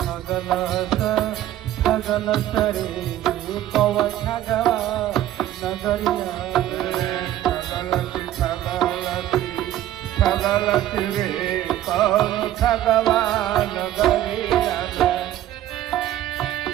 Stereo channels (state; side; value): quieter; left; 13.0 dB